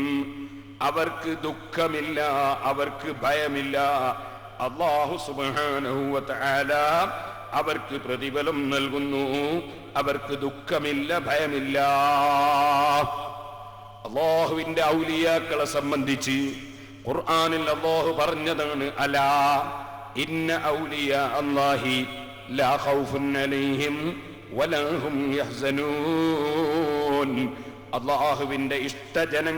അവർക്ക് ദുഃഖമില്ല, അവർക്ക് ഭയമില്ല. അല്ലാഹു സുബ്ഹാനഹു വ തആല അവർക്ക് പ്രതിഫലം നൽകുന്നു, അവർക്ക് ദുഃഖമില്ല, ഭയമില്ല. അല്ലാഹുവിന്റെ ഔലിയാക്കളെ സംബന്ധിച്ച് ഖുർആനിൽ അല്ലാഹു പറഞ്ഞതാണ്, അലാ ഇന്ന ഔലിയാ അല്ലാഹി ലാ ഖൗഫുൻ അലൈഹിം വലാ ഹും യഹ്സനൂൻ. അല്ലാഹുവിന്റെ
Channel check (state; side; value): identical; both; correlation 1.00